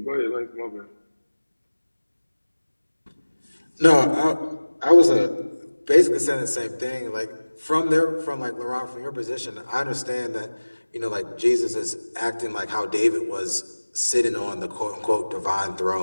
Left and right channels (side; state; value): both; inverted; correlation -1.00